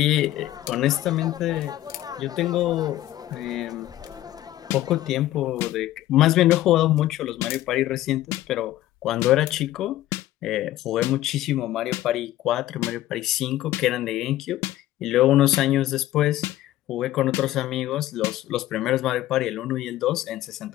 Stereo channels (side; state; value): right; quieter; 14.5 dB